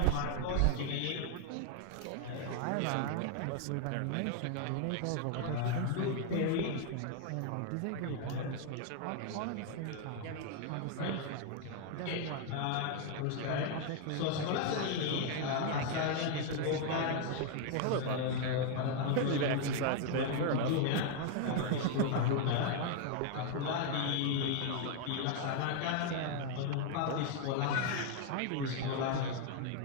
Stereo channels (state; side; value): different; both; correlation 0.00